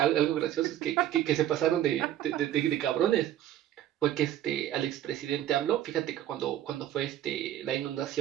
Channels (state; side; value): quieter; left; 12.1 dB